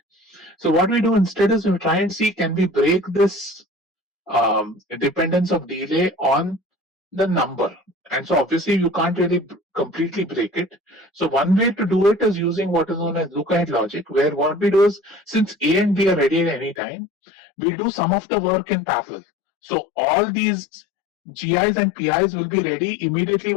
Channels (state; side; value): drops out; right; at 16.8 s